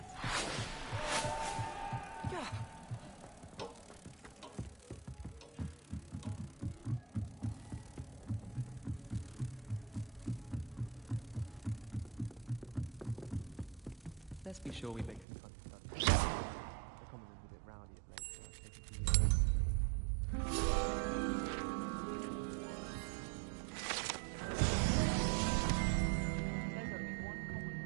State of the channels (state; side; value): drops out; left; at 15.2 s